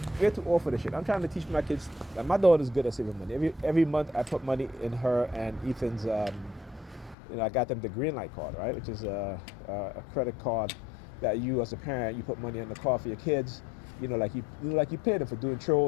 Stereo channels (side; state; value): right; drops out; at 7.2 s